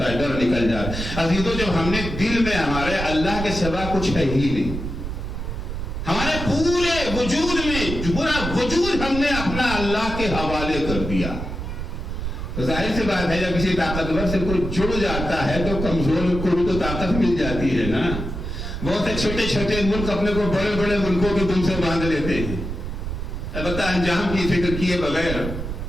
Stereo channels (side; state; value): right; noise; rumble, 5 dB below the sound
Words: ہے، ڈر نکل جاتا ہے۔ عزیزو جب ہم نے دل میں ہمارے اللہ کے سوا کچھ ہے ہی نہیں، ہمارے پورے وجود میں پورا وجود ہم نے اپنا اللہ کے حوالے کر دیا، تو ظاہر سی بات ہے جب کسی طاقتور سے کوئی جڑ جاتا ہے تو کمزور کو بھی تو طاقت مل جاتی ہے نا۔ بہت سے چھوٹے چھوٹے ملک اپنے کو بڑے بڑے ملکوں کے دم سے باندھ لیتے ہیں، البتہ انجام کی فکر کیے بغیر،